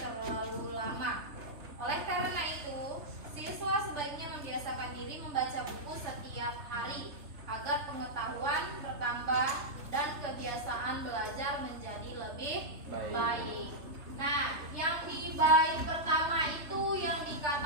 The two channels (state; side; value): late; left; 3.3 ms